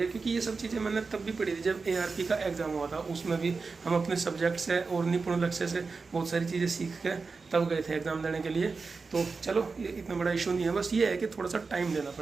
क्योंकि ये सब चीज़ें मैंने तब भी पढ़ी थी जब ARP का एग्ज़ाम हुआ था। उसमें भी हम अपने सब्जेक्ट से और निपुण लक्ष्य से बहुत सारी चीज़ें सीख के तब गए थे एग्ज़ाम देने के लिए। तो चलो ये इतना बड़ा इशू नहीं है, बस ये है कि थोड़ा सा टाइम देना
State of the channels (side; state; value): left; quieter; 4.5 dB